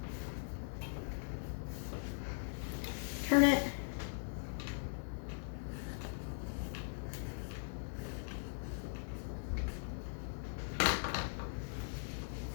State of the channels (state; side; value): silent; right; digital silence